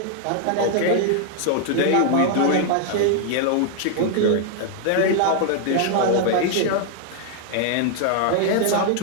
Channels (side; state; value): both; different; correlation 0.00